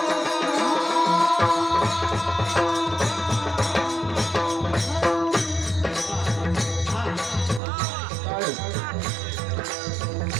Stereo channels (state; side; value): drops out; left; at 7.6 s